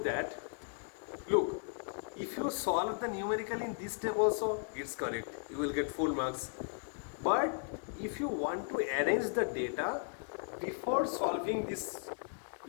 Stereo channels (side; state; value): right; silent; 54 dB below the other